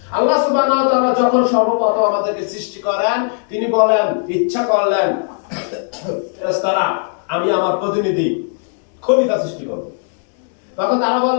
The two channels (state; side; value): silent; right; 68 dB below the other